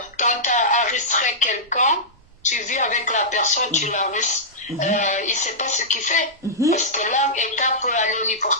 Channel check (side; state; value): both; normal; correlation -0.14